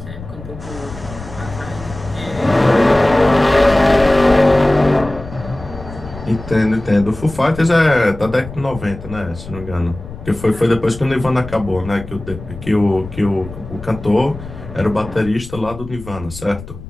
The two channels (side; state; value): left; noise; rumble, 14 dB below the sound